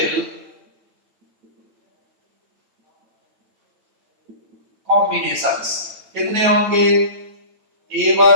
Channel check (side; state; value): left; late; 9.0 ms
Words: combinations कितने होंगे?